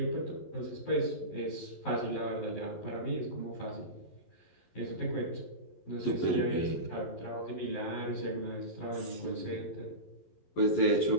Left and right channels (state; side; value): late; right; 11 ms